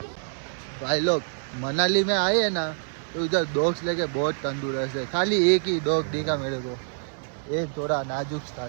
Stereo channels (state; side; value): silent; left; 60 dB below the other